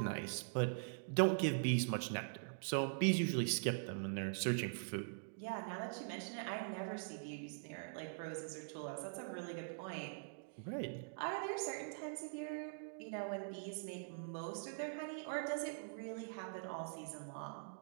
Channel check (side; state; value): left; silent; digital silence